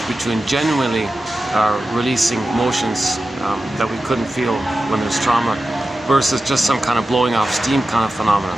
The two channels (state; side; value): normal; both; correlation 0.93